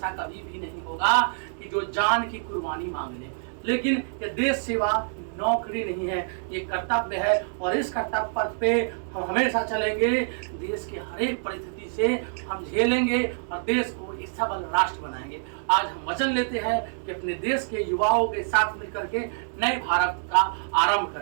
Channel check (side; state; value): left; silent; digital silence